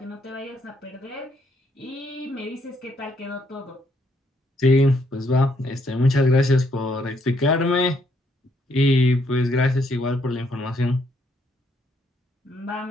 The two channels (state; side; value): normal; both; correlation 0.71